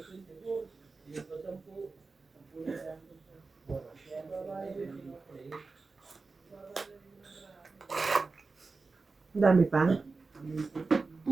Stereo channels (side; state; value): left; quieter; 4.0 dB